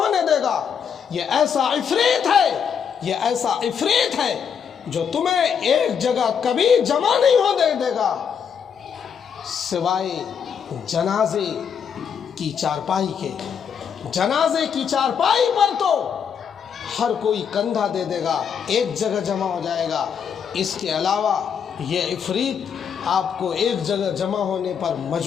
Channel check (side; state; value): right; quieter; 7.3 dB